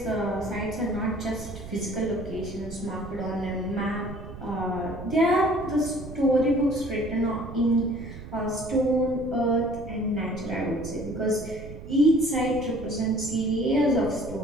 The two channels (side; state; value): right; noise; rumble, 12 dB below the sound